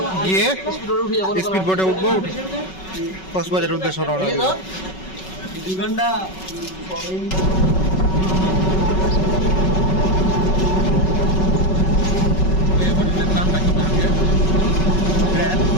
গিয়ে স্পিড বোটে উঠবো, কক্সবাজারের উদ্দেশ্যে রওনা দেব।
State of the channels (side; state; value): right; late; 5.3 ms